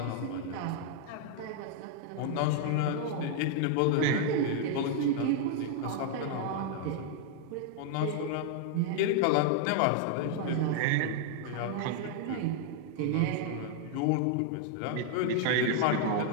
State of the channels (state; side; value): different; both; correlation 0.00